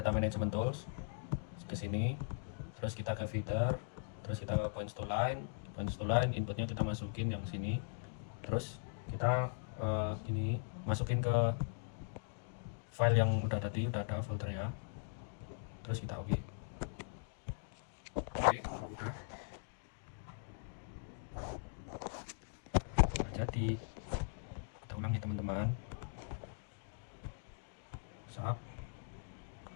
management tools, ke sini, terus kita ke feeder, terus kita ke points to line, inputnya kita masukin yang sini, terus kita ini masukin ke file yang udah tadi, udah ada foldernya, terus kita oke. Udah jadi, kita ulangi teman-teman. Sap,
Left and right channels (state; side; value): silent; right; digital silence